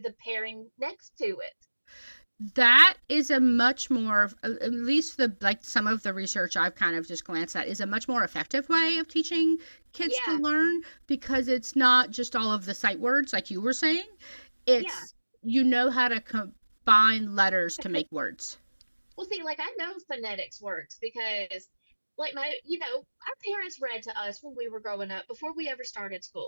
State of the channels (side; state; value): both; inverted; correlation -1.00